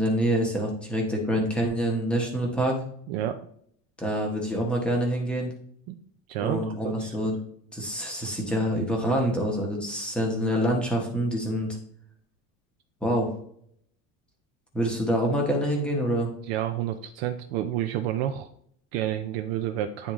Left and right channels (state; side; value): normal; both; correlation 0.44